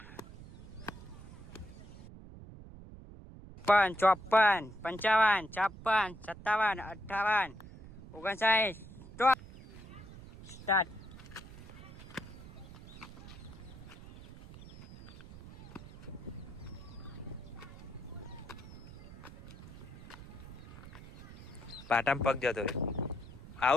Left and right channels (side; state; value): right; noise; rumble, 15 dB below the sound